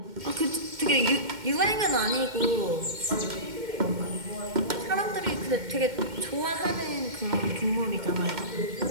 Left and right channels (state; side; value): late; left; 2.1 ms